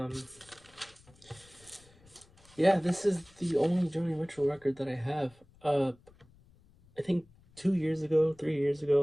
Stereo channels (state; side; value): noise; left; rumble, 28 dB below the sound